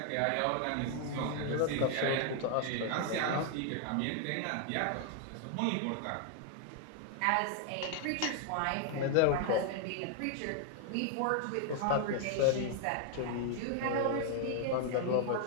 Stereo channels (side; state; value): both; different; correlation 0.00